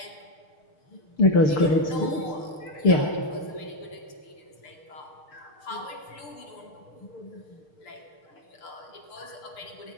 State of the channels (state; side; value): late; right; 6.6 ms